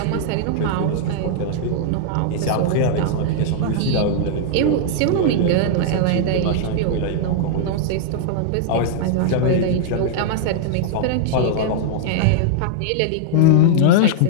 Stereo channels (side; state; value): both; different; correlation -0.01